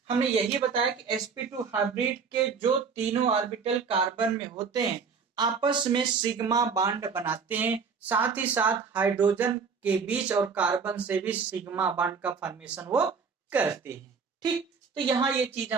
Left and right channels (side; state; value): left; quieter; 5.6 dB